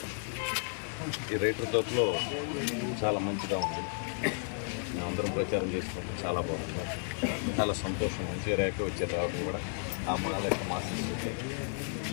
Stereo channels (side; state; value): right; silent; 56 dB below the other